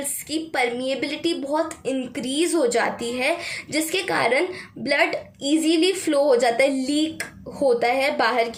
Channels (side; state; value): both; identical; correlation 1.00